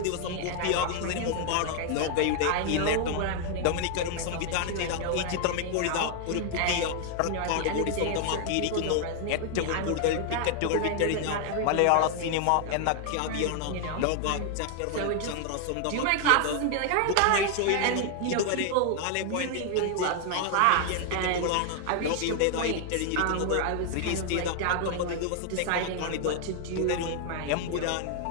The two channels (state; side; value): different; both; correlation 0.00